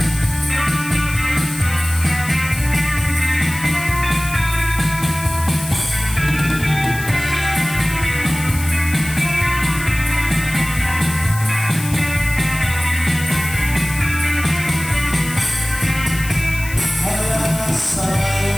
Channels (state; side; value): noise; left; hiss, 12 dB below the sound